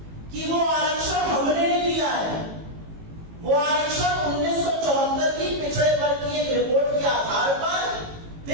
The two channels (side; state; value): left; late; 18 ms